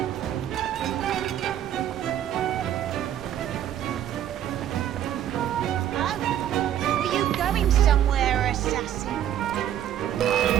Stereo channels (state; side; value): quieter; left; 10.9 dB